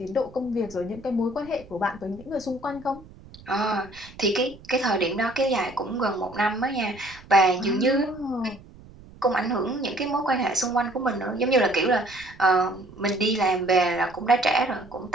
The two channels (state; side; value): noise; right; rumble, 21 dB below the sound